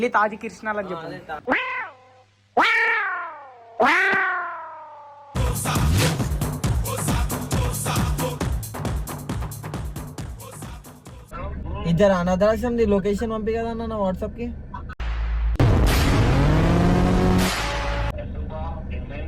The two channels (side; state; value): both; identical; correlation 1.00